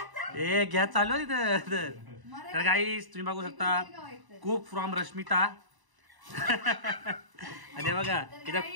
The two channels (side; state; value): left; late; 1.0 ms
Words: ए गॅस चालू आहे तिथं. तर गाईस तुम्ही बघू शकता कुक फ्रॉम रश्मिता. आणि बघा इथं